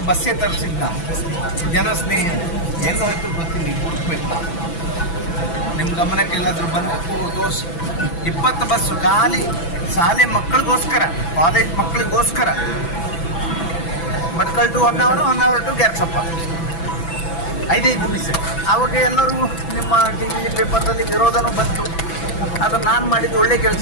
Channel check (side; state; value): right; late; 6.0 ms